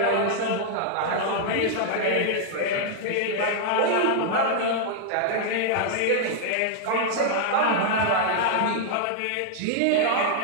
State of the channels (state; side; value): different; both; correlation -0.01